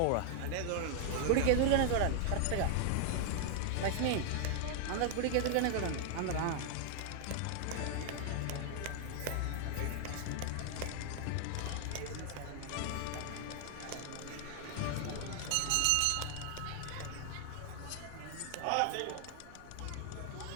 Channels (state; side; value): different; both; correlation 0.00